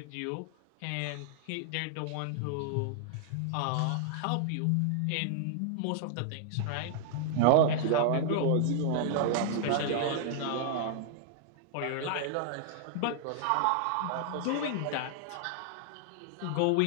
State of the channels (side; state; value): both; different; correlation -0.01